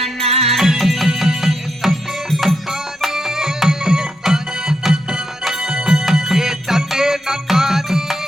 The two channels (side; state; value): both; normal; correlation 0.83